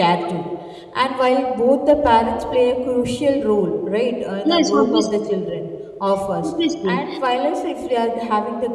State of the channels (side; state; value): both; identical; correlation 1.00